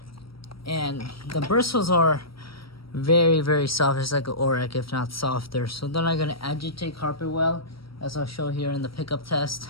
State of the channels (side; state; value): right; late; 0.75 ms